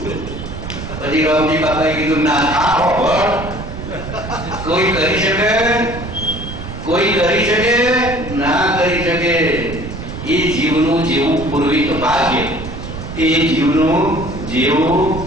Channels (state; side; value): noise; right; rumble, 9 dB below the sound